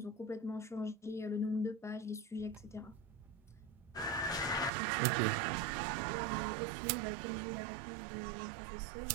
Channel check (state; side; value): drops out; left; at 4.7 s